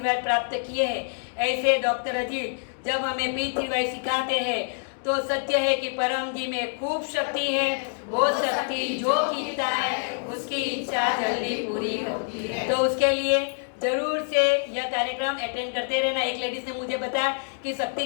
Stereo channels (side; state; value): right; silent; digital silence